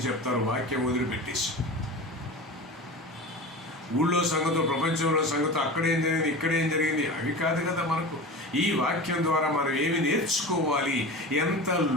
చెప్తారు, వాక్యం వదిలిపెట్టేసి. ఊళ్ళో సంగతులు, ప్రపంచంలో సంగతులు, అక్కడేం జరిగింది, ఇక్కడేం జరిగింది, అవి కాదు కదా మనకు. ఈ వాక్యం ద్వారా మనం ఏమి నేర్చుకోవాలి, ఎంత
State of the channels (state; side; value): normal; both; correlation 0.31